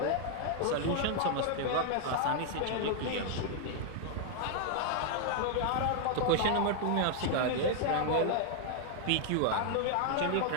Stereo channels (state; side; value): different; both; correlation 0.00